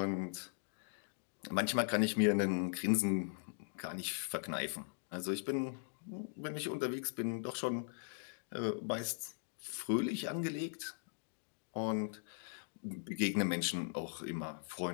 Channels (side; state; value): right; silent; digital silence